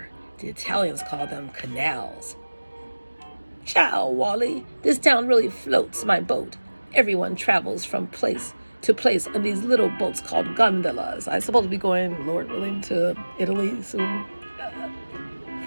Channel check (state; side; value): inverted; both; correlation -1.00